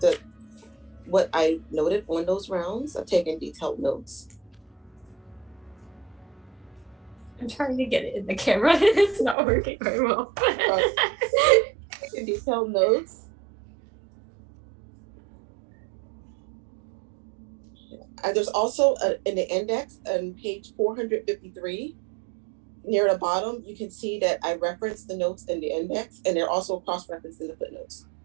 what I noted on those rounds. I've taken detailed notes. I'm trying to get it in the camera. It's not working very well. Taking detailed notes. There's also in the index on page 453. Near the bottom, you can see that I referenced the notes in the index, and they're also cross-referenced in the footnotes.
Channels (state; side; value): drops out; left; at 9.3 s